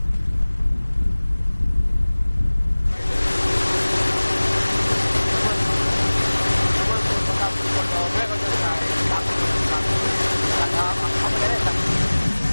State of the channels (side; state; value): both; inverted; correlation -1.00